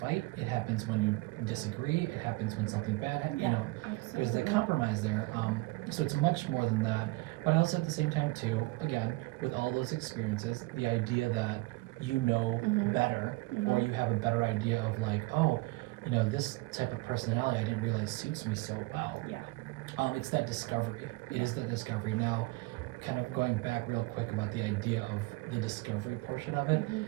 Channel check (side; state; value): left; quieter; 22.3 dB